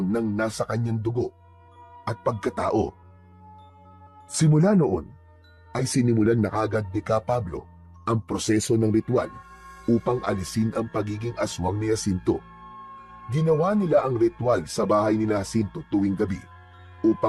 nang nasa kanyang dugo at pagkatao. Simula noon, ay sinimulan na kagad ni Ka Pablo ang proseso ng ritual upang alisin ang pagiging aswang ni Jacinto. Ginawa nila ang ritual sa bahay ni Jacinto tuwing gabi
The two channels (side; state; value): both; identical; correlation 1.00